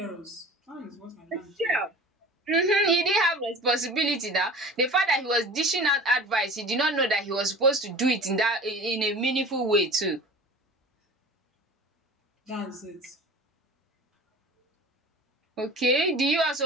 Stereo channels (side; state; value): both; normal; correlation 0.39